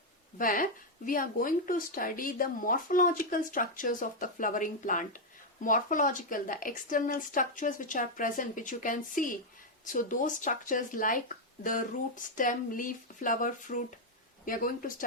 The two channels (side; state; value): both; normal; correlation 0.01